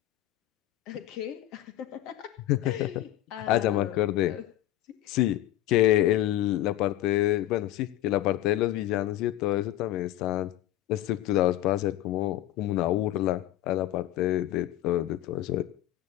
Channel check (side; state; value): right; quieter; 14.0 dB